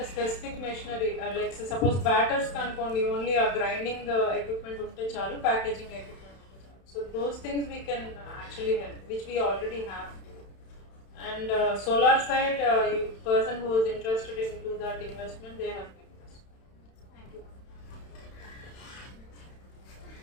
a specific machinery, like suppose batters అనుకోండి, only a grinding equipment ఉంటే చాలు, packaging equipment ఉంటే చాలు. So those things we can actually help, which we already have. And solar side, person who is interested into that investment, they have been invested. Thank you.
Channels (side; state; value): right; late; 31 ms